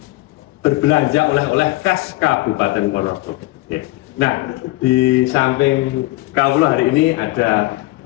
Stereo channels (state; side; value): quieter; right; 20.2 dB